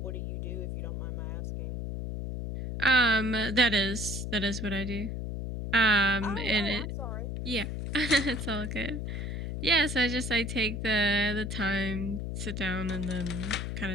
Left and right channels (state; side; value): noise; left; hum, 4 dB below the sound